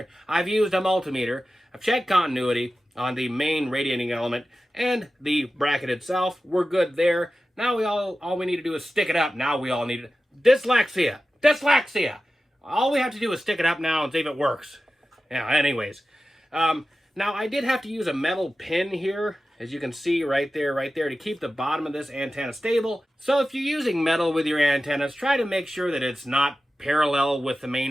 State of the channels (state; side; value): normal; both; correlation 0.94